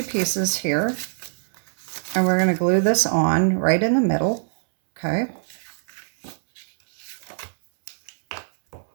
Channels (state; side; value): silent; left; 63 dB below the other